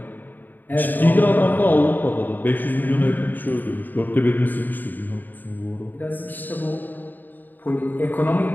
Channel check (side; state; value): right; late; 0.088 ms